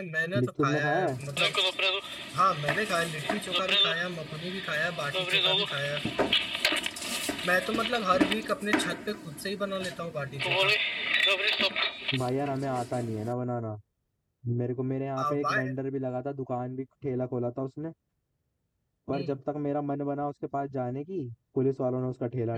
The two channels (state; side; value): identical; both; correlation 1.00